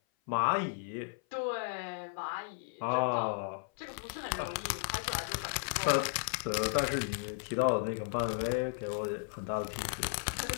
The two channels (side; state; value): right; silent; 55 dB below the other